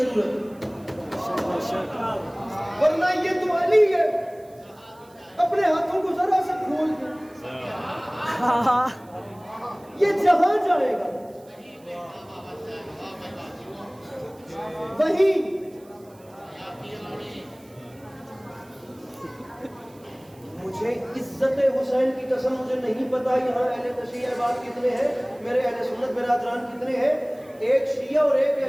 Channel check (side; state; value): right; noise; hiss, 29 dB below the sound